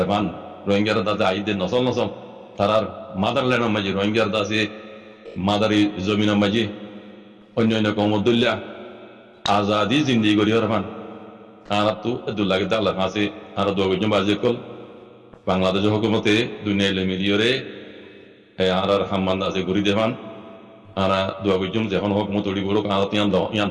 মান রোহিঙ্গার দাদা আইদের নসল নসল তারার মাদারল্যান্ডের মাঝে রোহিঙ্গার দাসে মাদারি জমিনের মাঝে অন্যান্য কমদুল্লা আজাদি জিন্দিগি করি হরে মান আর তো দুল্লাগে দাল্লার আছে আর দোয়াগুজন বাজে কল বাংলাদেশের হুকুমতে দুনিয়া মিলিয়রে আর হাম্মান আছে ঘুরি দেবান আর দোয়াগুজন যখন হুকুমত উড়ি বড় আর ইয়ান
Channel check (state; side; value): identical; both; correlation 1.00